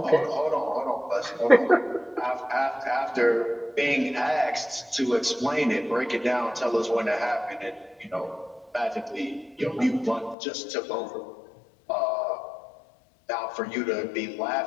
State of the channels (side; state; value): right; drops out; at 10.4 s